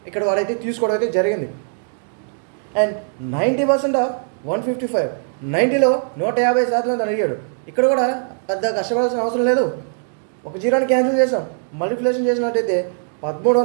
ఇక్కడ వాడైతే తీసుకోవడం అయితే జరిగింది. అండ్ 90% ఆఫ్ 155, 90లో 150% అని అడిగాడు. ఇక్కడ కూడా పెద్ద కష్టపడాల్సిన అవసరం లేదు. ఒక జీరోని క్యాన్సిల్ చేసాం, మల్టిప్లికేషన్ చేసినట్టయితే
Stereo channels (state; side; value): silent; left; digital silence